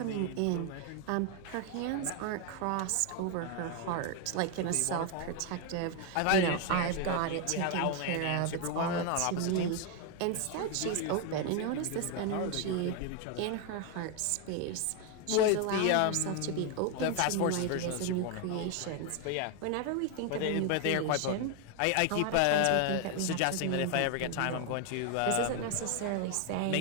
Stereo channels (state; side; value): different; both; correlation 0.01